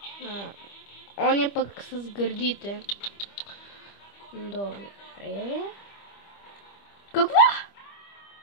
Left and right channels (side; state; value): right; late; 25 ms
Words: Он е пък с гърдите. Добре. Какво?